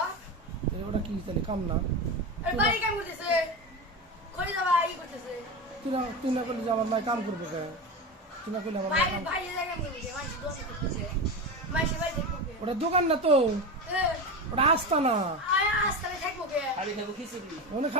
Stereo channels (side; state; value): both; normal; correlation 0.22